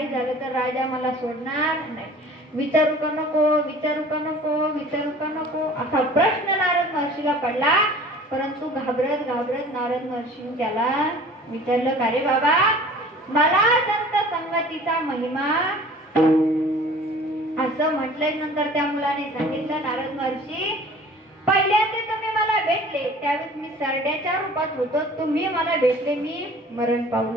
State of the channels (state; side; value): normal; both; correlation 0.46